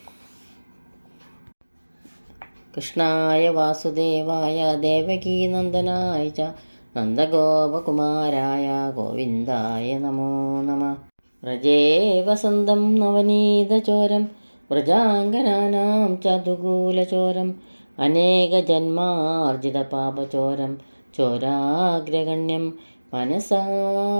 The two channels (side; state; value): both; inverted; correlation -1.00